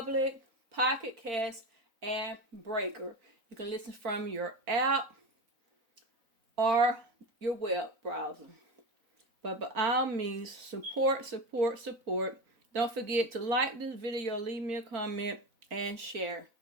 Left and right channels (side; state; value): left; late; 4.0 ms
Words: Pocket Cast, and Breaker. You can listen from your app or your web browser. But by all means, support, support, support. Don't forget to like this video, leave me a comment, and share.